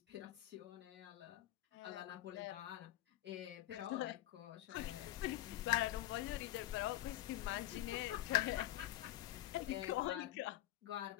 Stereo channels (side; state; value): right; quieter; 14.4 dB